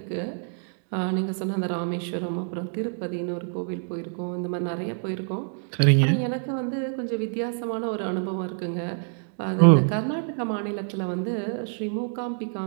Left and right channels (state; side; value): silent; left; digital silence